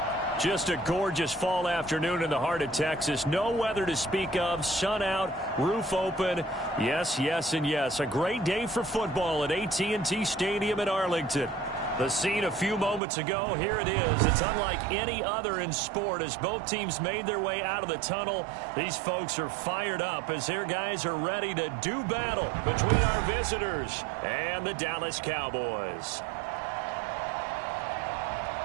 Just a gorgeous fall afternoon in the heart of Texas. No weather to speak of. Sun out, roof open. Yes, yes, and yes. A great day for football at AT&T Stadium in Arlington. The scene a few moments ago, here it is. It's unlike any other in sport as both teams made their way out of the tunnel. These folks are fired up as their guys are ready to do battle between our visitors and the Dallas Cowboys.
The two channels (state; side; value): drops out; left; at 13.0 s